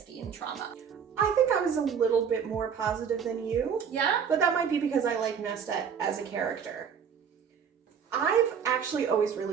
and trauma. I think I was a little bit more positive than you. Yeah? But that might be because I like Nesta as a character. I've actually always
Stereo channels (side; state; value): left; quieter; 7.3 dB